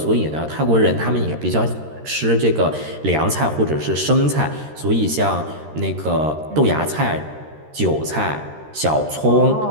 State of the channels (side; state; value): left; late; 13 ms